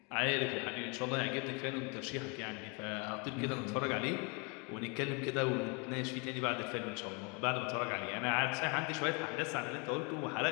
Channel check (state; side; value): quieter; right; 31.9 dB